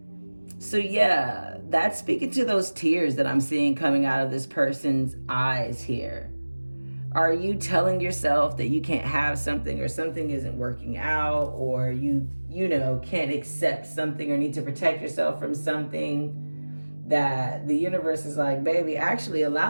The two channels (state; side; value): inverted; both; correlation -1.00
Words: So yeah, that's speaking to those tears that I'm seeing coming out of this person's eyes here. Are you telling yourself that you can't have something or something isn't working out, or you can't accept something or need to protect yourself from something, that the universe is like, baby, actually